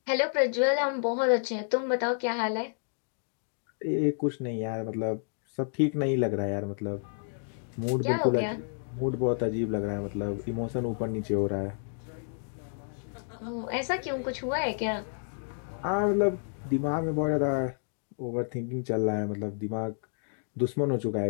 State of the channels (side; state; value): right; silent; digital silence